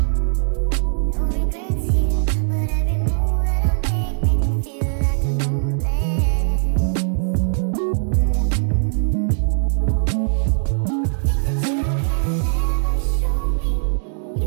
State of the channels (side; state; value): left; silent; digital silence